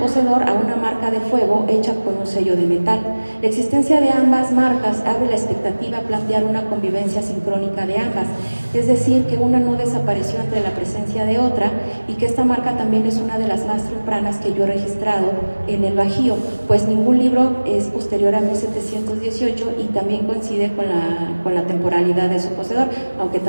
a una marca de fuego hecha con un sello de metal. La existencia de ambas marcas abre la expectativa a plantear una convivencia sincrónica de ambas, es decir, que una no desapareció ante la presencia de otra y que esta marca también es una de las más tempranas que yo he registrado en el Bajío, pues ningún libro es posterior a 1718 y también coincide con la temporalidad de su poseedor, aunque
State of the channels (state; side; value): inverted; both; correlation -1.00